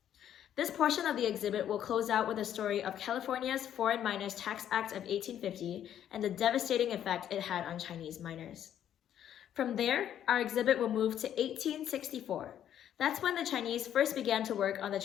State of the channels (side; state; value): right; quieter; 10.3 dB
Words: This portion of the exhibit will close out with a story of California's Foreign Miners Tax Act of 1850 and the devastating effect it had on Chinese miners. From there, our exhibit will move to 1864. That's when the Chinese first began to work on the